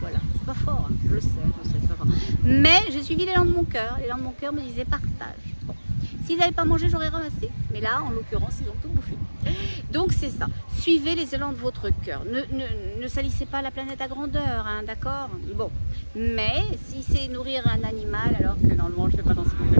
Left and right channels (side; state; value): both; inverted; correlation -1.00